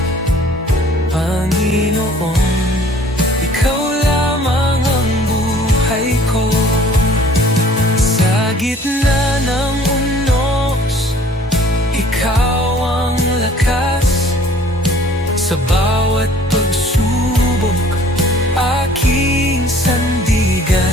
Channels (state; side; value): normal; both; correlation 0.54